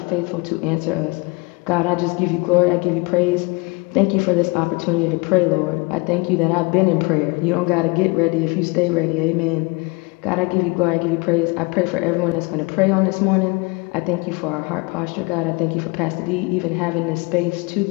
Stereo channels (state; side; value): quieter; right; 27.6 dB